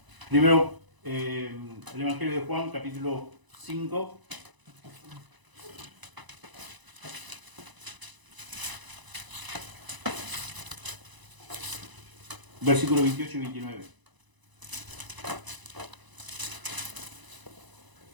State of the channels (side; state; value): left; late; 1.0 ms